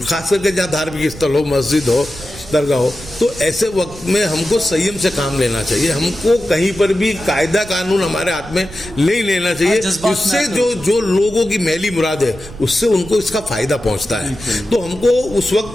खास करके जहाँ धार्मिक स्थल हो, मस्जिद हो, दरगाह हो। तो ऐसे वक्त में हमको संयम से काम लेना चाहिए। हमको कहीं पर भी कायदा कानून हमारे हाथ में नहीं लेना चाहिए, जिससे जो लोगों की मैली मुराद है उससे उनको इसका फायदा पहुंचता है। तो हमको उस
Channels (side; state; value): right; noise; rumble, 16 dB below the sound